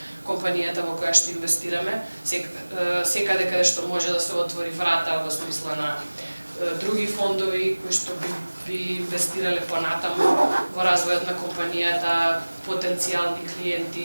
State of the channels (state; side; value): inverted; both; correlation -1.00